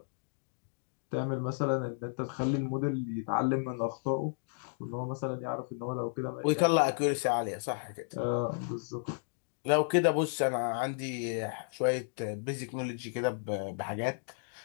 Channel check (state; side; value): silent; right; digital silence